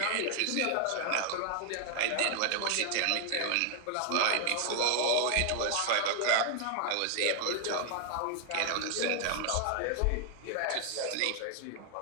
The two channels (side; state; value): both; different; correlation 0.00